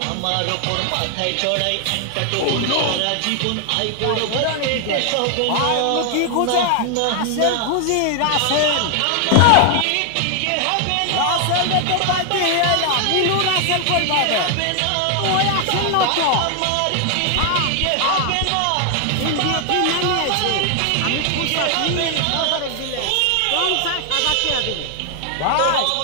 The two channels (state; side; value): different; both; correlation 0.00